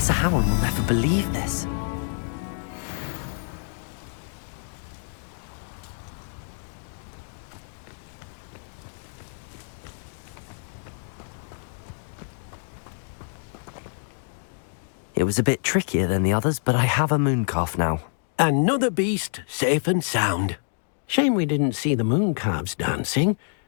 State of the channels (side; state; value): right; silent; digital silence